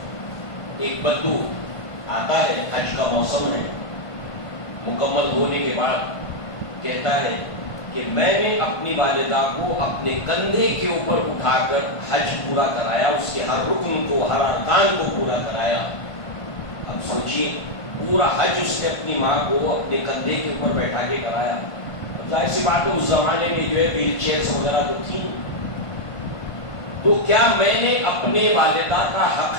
ایک بدو آتا ہے، حج کا موسم ہے، مکمل ہونے کے بعد کہتا ہے کہ میں نے اپنی والدہ کو اپنے کندھے کے اوپر اٹھا کر حج پورا کرایا، اس کے ہر رکن کو، ہر ارکان کو پورا کرایا۔ اب سوچئے پورا حج اس نے اپنی ماں کو اپنے کندھے کے اوپر بیٹھا کے کرایا. ظاہر سی بات ہے اس زمانے میں جو ہے ویل چیئرس وغیرہ تو تھی. تو کیا میں نے اپنے والدہ کا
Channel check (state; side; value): late; right; 1.5 ms